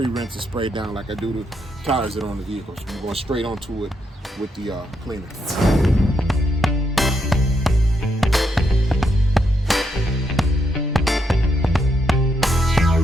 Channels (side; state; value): both; normal; correlation 0.79